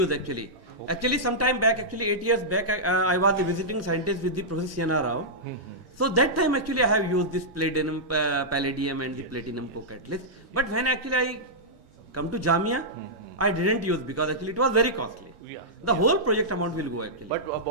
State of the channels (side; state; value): both; normal; correlation -0.11